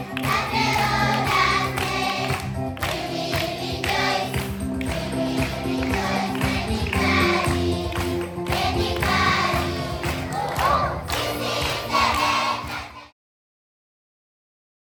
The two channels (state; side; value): identical; both; correlation 1.00